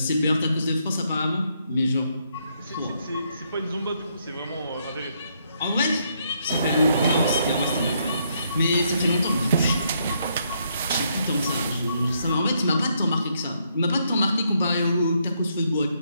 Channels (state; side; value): inverted; both; correlation -0.74